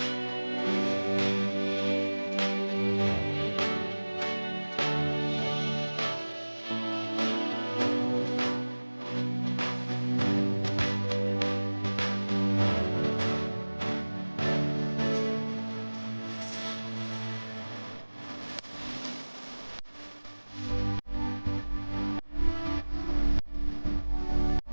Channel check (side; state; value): both; inverted; correlation -1.00